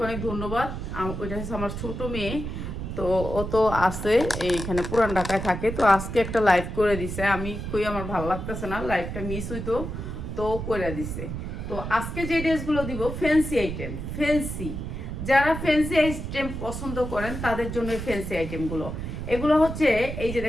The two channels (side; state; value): right; noise; rumble, 6 dB below the sound